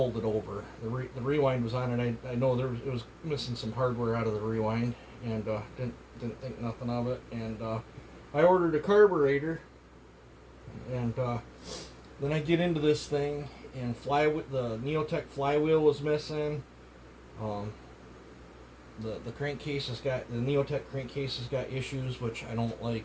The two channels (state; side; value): identical; both; correlation 1.00